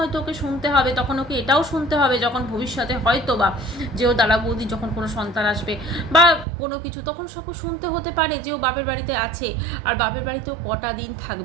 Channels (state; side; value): drops out; left; at 6.5 s